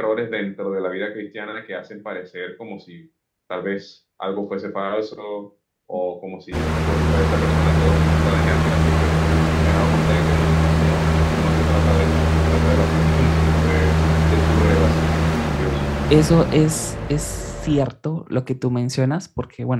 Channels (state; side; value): identical; both; correlation 1.00